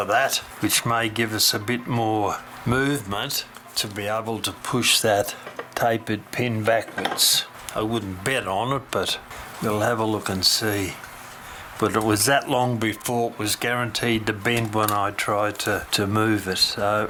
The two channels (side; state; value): both; identical; correlation 1.00